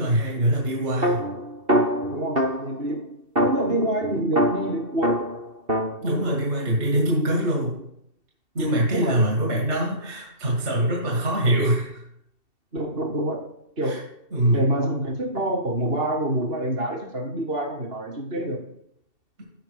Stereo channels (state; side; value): late; left; 2.7 ms